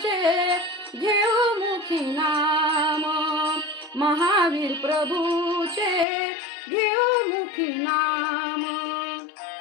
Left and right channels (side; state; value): right; drops out; at 6.1 s